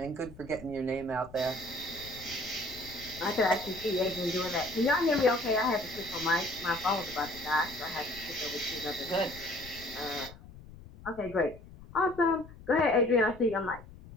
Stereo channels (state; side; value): noise; left; rumble, 18 dB below the sound